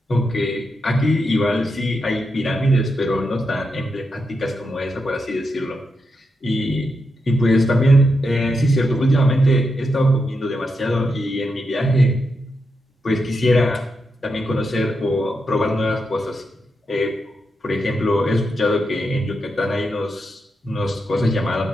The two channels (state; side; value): normal; both; correlation 0.85